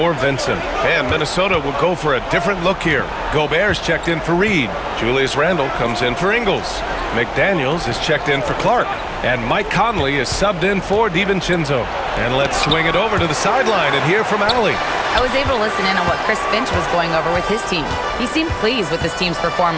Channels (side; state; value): both; identical; correlation 1.00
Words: Vincent. And Minnesota will go for a different look here. Gobert's checked in for Reed. Julius Randle comes in for Ingles. McDaniels is checked in for Clark. And Mike Conley is subbed in for DiVincenzo. And let's swing it over to the sideline and hear from Allie. I was able to listen in on what Chris Finch was going over with his team. He seemed pleased with his team's